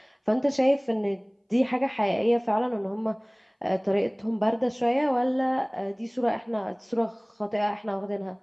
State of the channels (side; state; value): both; identical; correlation 1.00